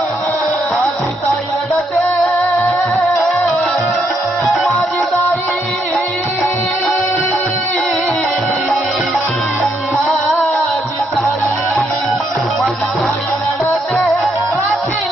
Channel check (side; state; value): both; normal; correlation 0.75